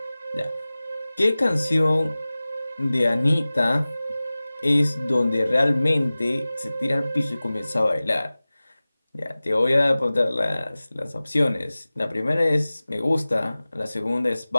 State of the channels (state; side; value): inverted; both; correlation -0.98